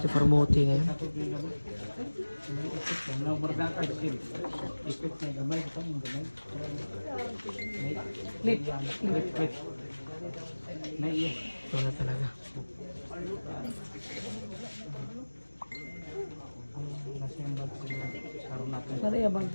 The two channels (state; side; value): inverted; both; correlation -1.00